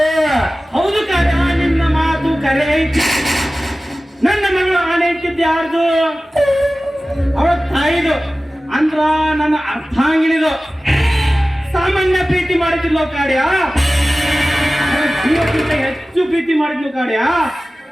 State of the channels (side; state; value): both; normal; correlation 0.96